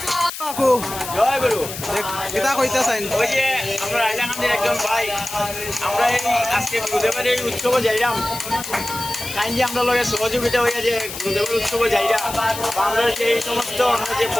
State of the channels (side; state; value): left; noise; hiss, 9 dB below the sound